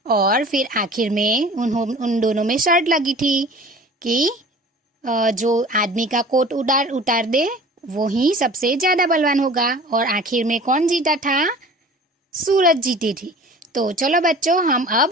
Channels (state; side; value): normal; both; correlation 0.43